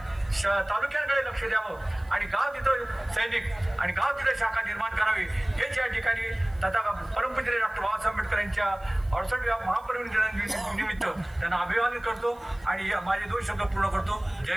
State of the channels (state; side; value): noise; right; hiss, 30 dB below the sound